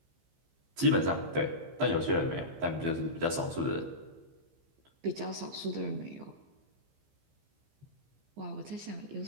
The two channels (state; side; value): late; left; 15 ms